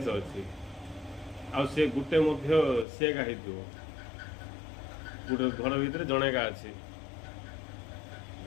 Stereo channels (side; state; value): right; drops out; at 2.9 s